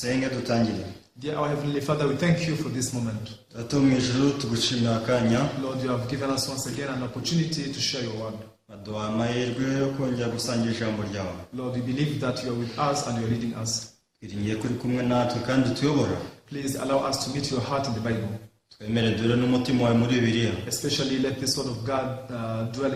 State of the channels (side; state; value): both; identical; correlation 1.00